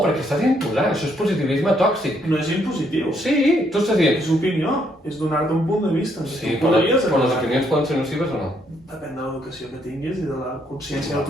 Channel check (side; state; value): both; normal; correlation 0.72